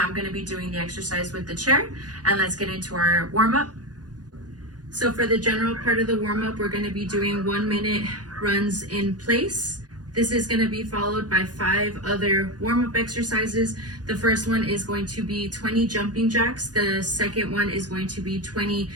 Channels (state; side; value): late; left; 0.69 ms